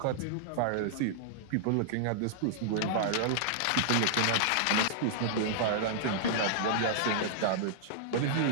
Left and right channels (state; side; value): different; both; correlation -0.01